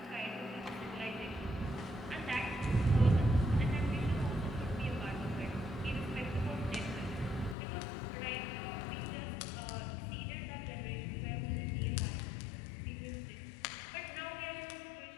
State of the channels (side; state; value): right; drops out; at 7.6 s